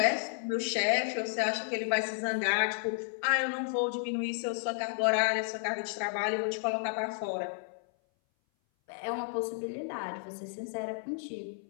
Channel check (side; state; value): right; silent; 56 dB below the other